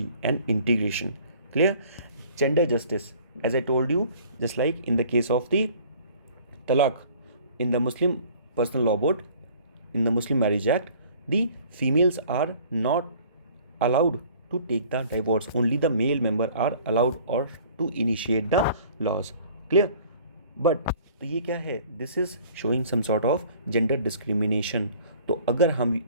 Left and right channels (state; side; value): inverted; both; correlation -0.51